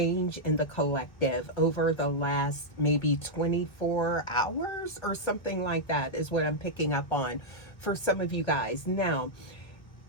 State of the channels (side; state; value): right; late; 1.6 ms